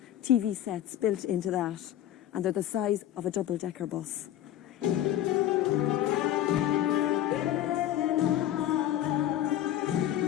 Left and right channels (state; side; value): quieter; right; 12.1 dB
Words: TV sets built into that, and they're the size of a double-decker bus.